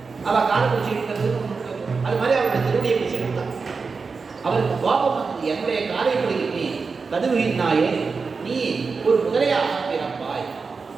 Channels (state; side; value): quieter; left; 4.8 dB